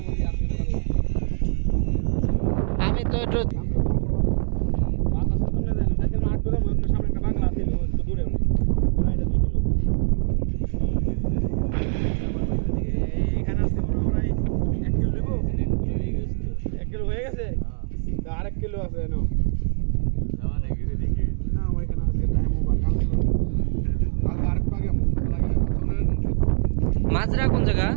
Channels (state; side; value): silent; left; digital silence